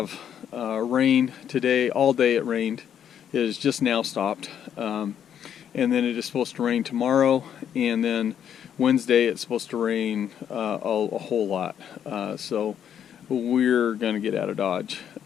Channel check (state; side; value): quieter; right; 9.1 dB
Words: rain today. All day it rained. It has just now stopped, and then it is supposed to rain tomorrow, and then Wednesday it's supposed to rain a whole lot. So we're going to get out of Dodge.